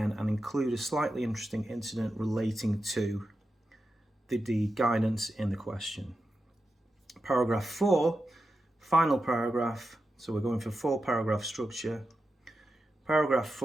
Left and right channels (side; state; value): both; normal; correlation 0.90